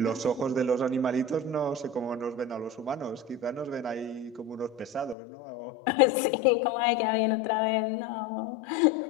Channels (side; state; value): right; drops out; at 5.2 s